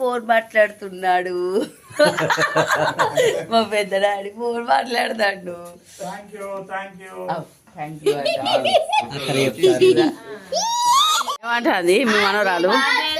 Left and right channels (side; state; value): both; identical; correlation 1.00